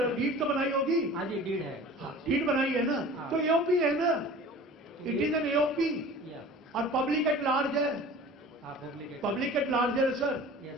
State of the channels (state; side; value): normal; both; correlation 0.42